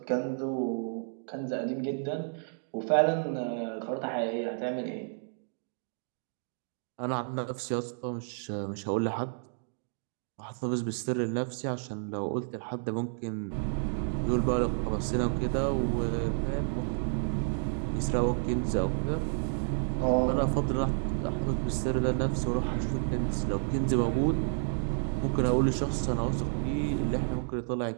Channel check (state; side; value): silent; left; digital silence